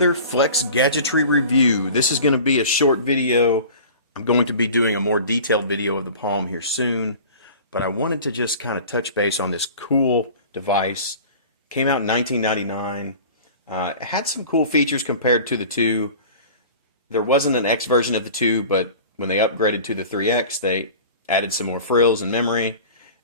Flex Gadgetry review. This is going to be a short video. I'm going to be doing a more detailed video of the Palm here soon, but I wanted to just kind of touch base on this cool device. Came out in 1999. It had some cool features compared to the 2. There wasn't an X version of the 2, but when they upgraded to the 3X, they added some more frills and memory.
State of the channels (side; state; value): both; inverted; correlation -0.40